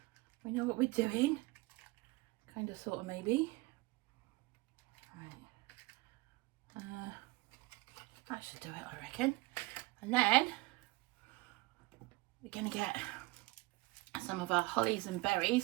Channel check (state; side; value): quieter; left; 22.3 dB